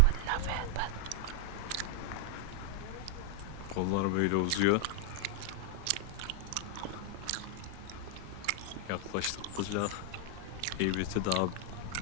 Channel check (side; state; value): both; different; correlation -0.01